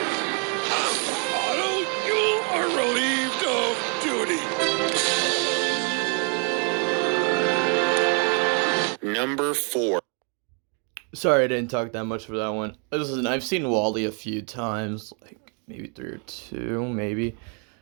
Number 4. Sorry I didn't talk that much for that one. Listen, I've seen WallE a few times, like maybe 3 or 2, maybe.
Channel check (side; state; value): left; quieter; 39.4 dB